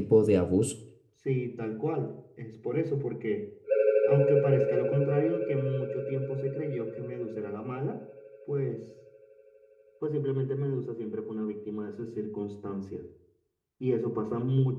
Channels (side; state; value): both; identical; correlation 1.00